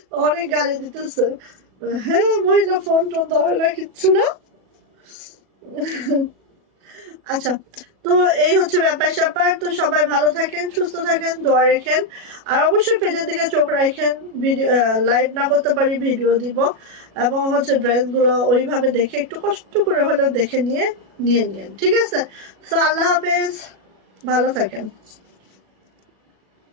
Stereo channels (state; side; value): late; left; 37 ms